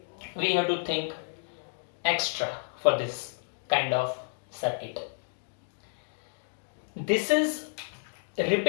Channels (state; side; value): silent; right; digital silence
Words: We have to think extra for this kind of circuit. This is